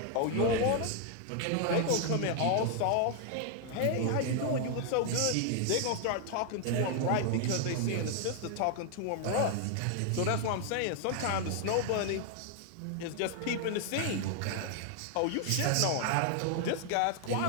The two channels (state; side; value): different; both; correlation 0.00